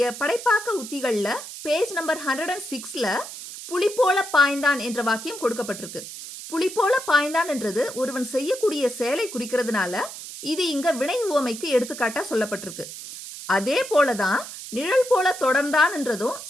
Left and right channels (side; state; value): right; noise; hiss, 11 dB below the sound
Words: படைப்பாக்க உத்திகள்ல பேஜ் நம்பர் 106ல புலி போல பாய்ந்தான் என்ற வாக்கியம் கொடுக்கப்பட்டிருக்கு. புலி போல பாய்ந்தான் என்றது ஒருவன் செய்யக்கூடிய செயலை குறிக்கிறதுனால இது இங்க வினை உவமைக்கு எடுத்துக்காட்டா சொல்லப்பட்டிருக்கு. அதே போலதான் நிழல் போல தொடர்ந்தான் என்றதும்